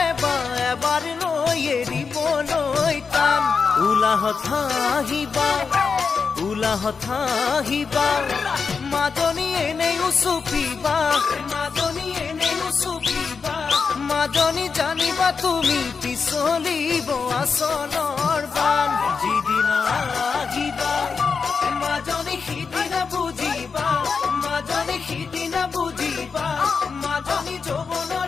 বা এবাৰ লৈ এৰিবলৈ টান উলাহত আহিবা উলাহত আহিবা মাজনী এনেই উচুপিবা মাজনী এনেই উচুপিবা মাজনী জানিবা তুমি পিছলিব আচলৰ বান যিদিনা আহিবা মাজনী সিদিনা বুজিবা মাজনী সিদিনা বুজিবা মাজনী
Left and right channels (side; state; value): right; quieter; 5.4 dB